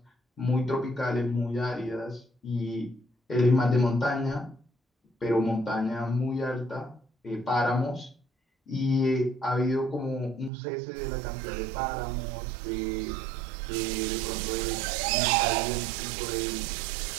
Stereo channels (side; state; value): left; drops out; at 10.5 s